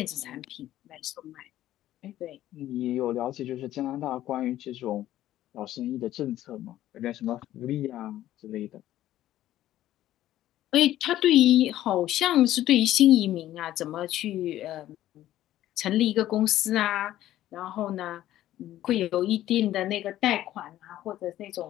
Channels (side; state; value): right; quieter; 13.5 dB